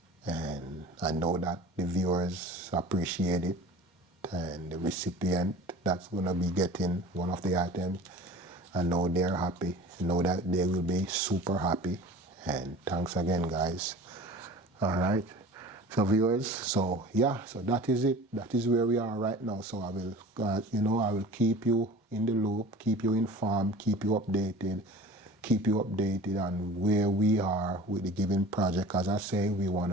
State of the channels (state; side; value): normal; both; correlation 0.40